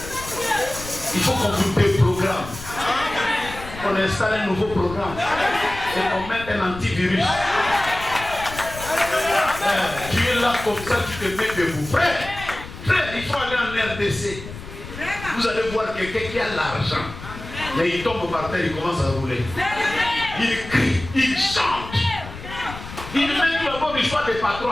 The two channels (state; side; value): noise; left; rumble, 13 dB below the sound